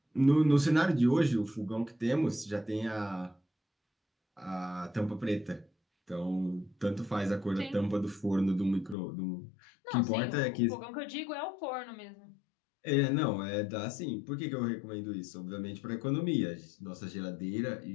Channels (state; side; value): drops out; right; at 9.0 s